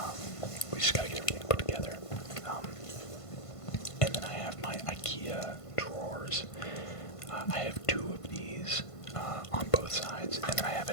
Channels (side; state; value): right; late; 1.5 ms